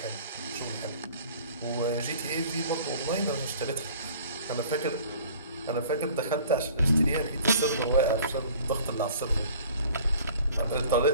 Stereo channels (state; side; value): inverted; both; correlation -0.49